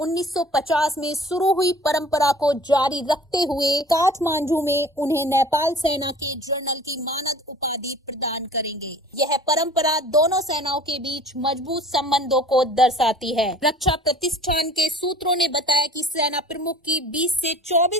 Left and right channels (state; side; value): normal; both; correlation 0.46